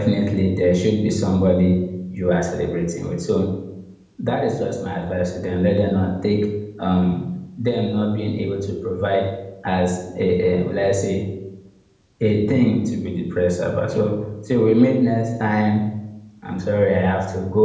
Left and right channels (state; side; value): identical; both; correlation 1.00